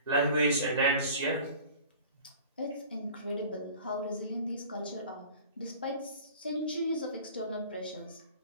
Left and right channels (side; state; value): both; inverted; correlation -0.43